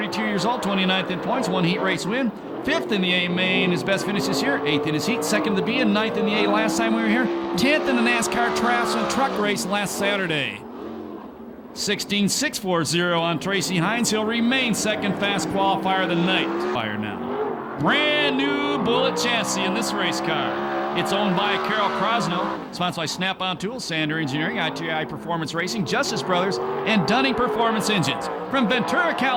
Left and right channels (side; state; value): both; identical; correlation 1.00